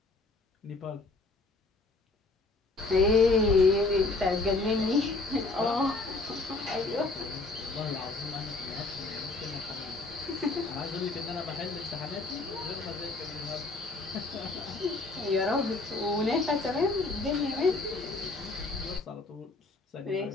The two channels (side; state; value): right; quieter; 3.4 dB